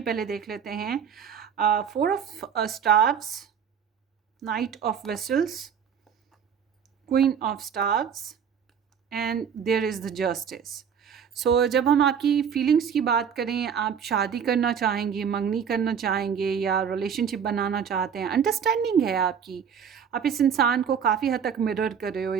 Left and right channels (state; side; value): quieter; left; 7.5 dB